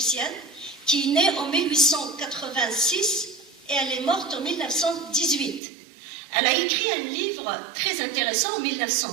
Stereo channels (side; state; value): left; drops out; at 5.6 s